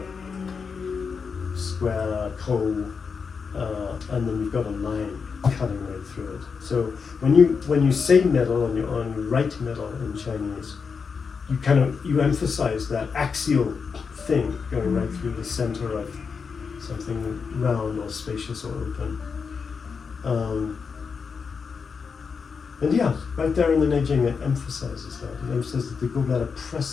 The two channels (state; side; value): quieter; right; 5.6 dB